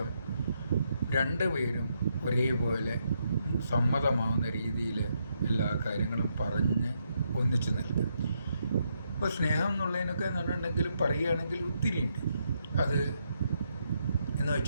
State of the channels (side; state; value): both; inverted; correlation -0.79